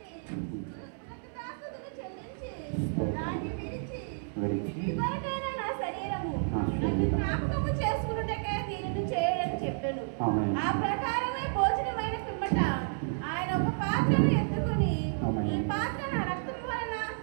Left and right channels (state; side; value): silent; left; 57 dB below the other